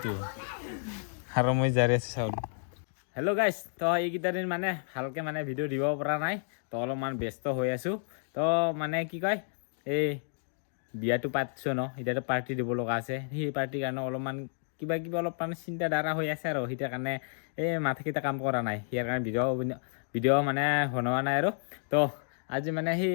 আৰু মই জাৰি আছোঁ চাউল হেল্ল' গাইছ তো এইকেইটা দিন মানে ভালকৈ মানে ভিডিঅ' দিব পৰা নাই তো অলপমান ব্যস্ত হৈ আছোঁ তো মানে কি কয় এই বিয়াটো পাতিছোঁ ন এতিয়াতো পাৰ্টি দিব লগা আছে সেই পাৰ্টিৰ কাৰণে অলপমান কিবা অলপ মানে চিন্তাধাৰা হৈ আছে আৰু সেইটাৰ কাৰণে এই মাথাকেইটা কাম কৰা নাই ইয়াৰ কাৰণে ভিডিঅ' মানে বনোৱা নাই আৰু তো আজি মানে সেই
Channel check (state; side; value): silent; right; digital silence